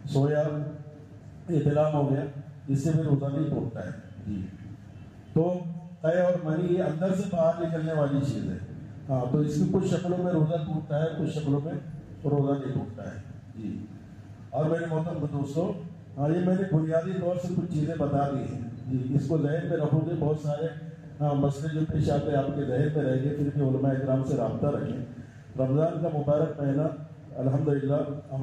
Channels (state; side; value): identical; both; correlation 1.00